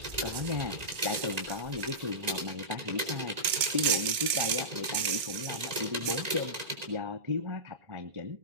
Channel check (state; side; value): late; left; 2.2 ms